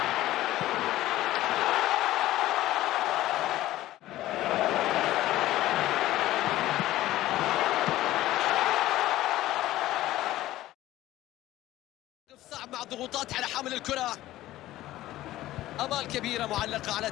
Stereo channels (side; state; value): right; quieter; 15.4 dB